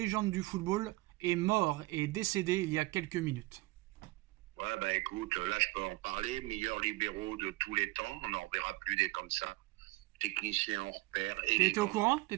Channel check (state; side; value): quieter; left; 21.1 dB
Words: du football, est mort et décédé il y a quelques minutes. Ouais, écoute, là je peux en parler. Meilleur libéraux de tous les temps, on n'en verra plus des comme ça. Technicien hors pair. T'étais au courant?